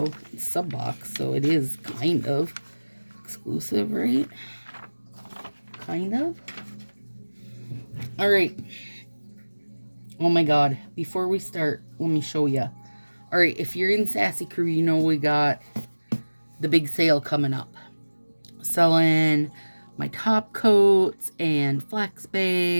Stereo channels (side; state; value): both; inverted; correlation -1.00